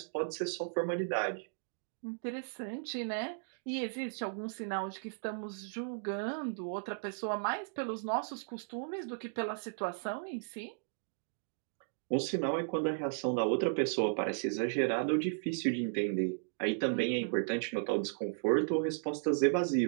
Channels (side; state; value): left; silent; digital silence